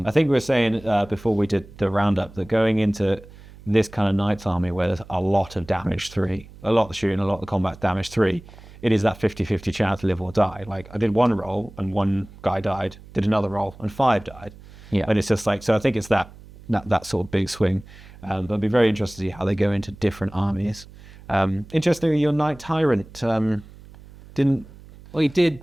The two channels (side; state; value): right; noise; hum, 20 dB below the sound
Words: I think we were saying before we did the roundup that going into this kind of Knights army where there's a lot of damage 3, a lot of shooting, a lot of combat damage 3, it is that 50-50 chance to live or die. Like I did 1 roll and 1 guy died, did another roll and 5 died. Yeah. And it's just like, so I think it's that sort of big swing. But it'd be very interesting to see how they go into different armies. Interestingly, your Knight Tyrant didn't. Well, he did